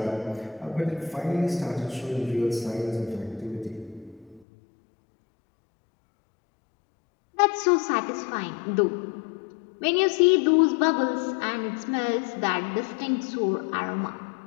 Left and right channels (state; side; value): drops out; right; at 4.5 s